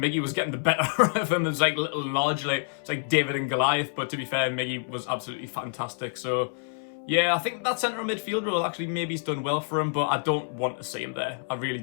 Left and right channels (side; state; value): right; silent; 59 dB below the other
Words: was getting the better of him. It's like little large, like it's like David and Goliath. But to be fair, Miggy was absolutely fantastic. So yeah, I think that centre midfield role actually maybe he's done well for him, but I don't want to see him there. I really